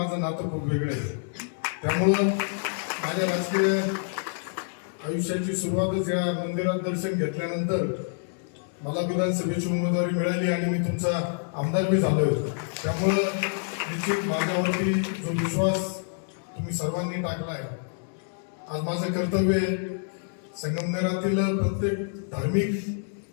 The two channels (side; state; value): right; silent; digital silence